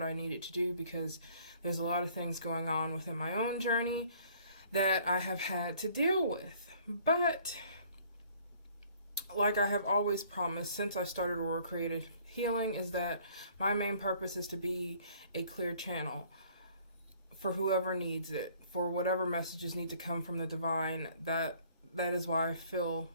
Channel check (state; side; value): inverted; both; correlation -0.58